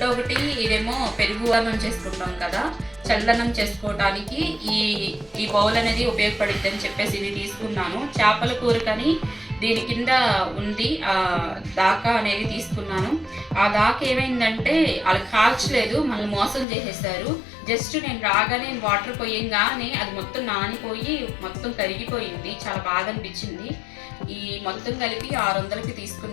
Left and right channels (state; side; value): drops out; right; at 16.7 s